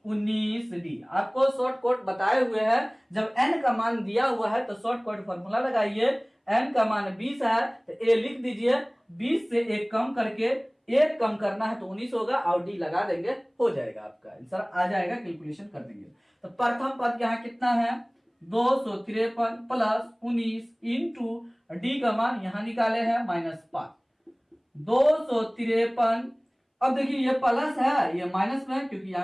19d। आपको शॉर्ट कट बताए हुए हैं, जब n का मान दिया हुआ है तो शॉर्ट कट फॉर्मूला लगाइए। n का मान 20 है तो a लिख दीजिए, 20 से 1 कम करके 1 कम करना है तो 19 होगा और d लगा देंगे, हो जाएगा आपका आंसर आ जाएगा, कैलकुलेशन कर देंगे। तो प्रथम पद यहाँ कितना है 253 प्लस 19 इंटू डी का मान यहाँ निकाले हैं -5, 253। अब देखिए ये प्लस है ये माइनस में, क्योंकि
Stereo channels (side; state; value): both; identical; correlation 1.00